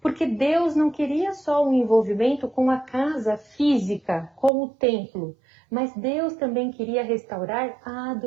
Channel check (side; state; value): left; drops out; at 4.5 s